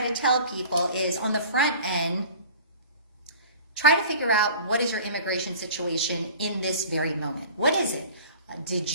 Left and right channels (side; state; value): both; inverted; correlation -0.42